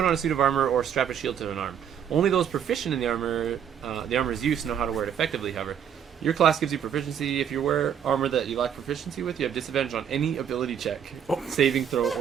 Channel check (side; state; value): left; quieter; 8.6 dB